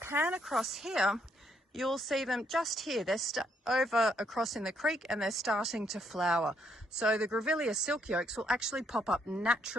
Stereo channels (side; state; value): both; normal; correlation 0.72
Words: across here, you'll see them just here. They're over across in the creek, and they're starting to flower. So the Grevillea silky oaks will actually pop up